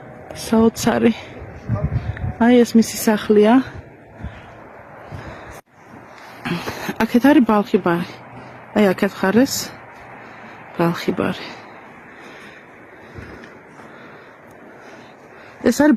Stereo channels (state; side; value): identical; both; correlation 1.00